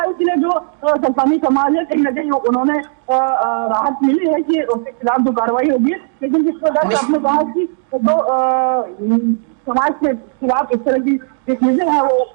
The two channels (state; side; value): silent; left; 65 dB below the other